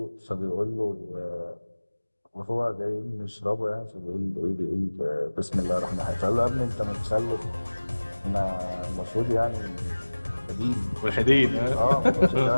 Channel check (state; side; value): inverted; both; correlation -1.00